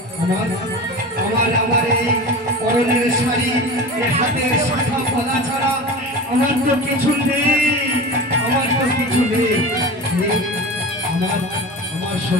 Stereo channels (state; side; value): normal; both; correlation 0.31